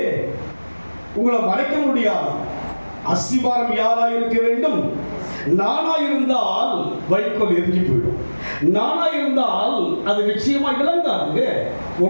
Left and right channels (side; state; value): both; inverted; correlation -1.00